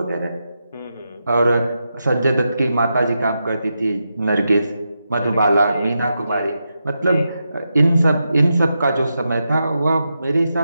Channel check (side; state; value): both; inverted; correlation -0.87